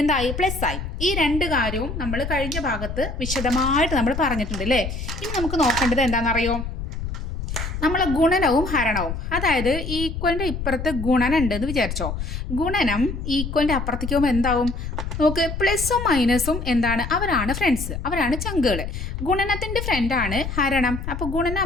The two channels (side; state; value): left; noise; rumble, 6 dB below the sound